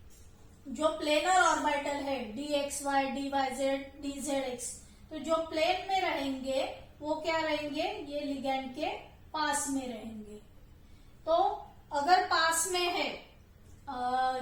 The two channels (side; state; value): both; identical; correlation 1.00